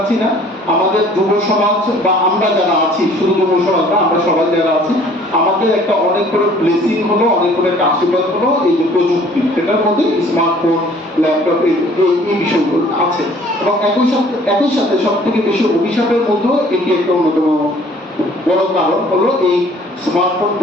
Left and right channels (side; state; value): both; normal; correlation 0.55